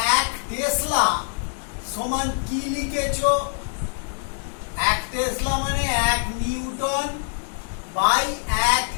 এক টেসলা সমান কি লিখেছো? এক টেসলা মানে 1 নিউটন বাই 1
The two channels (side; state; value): right; silent; 63 dB below the other